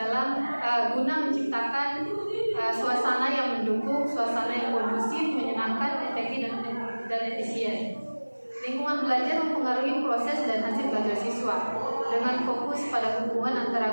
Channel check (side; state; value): both; inverted; correlation -1.00